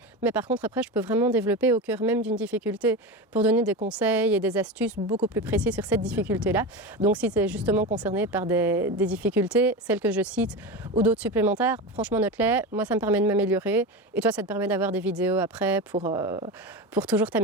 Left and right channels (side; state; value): both; normal; correlation 0.22